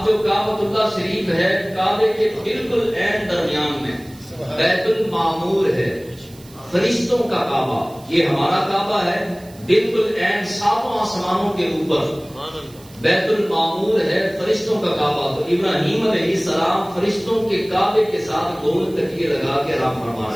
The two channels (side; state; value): right; noise; hiss, 23 dB below the sound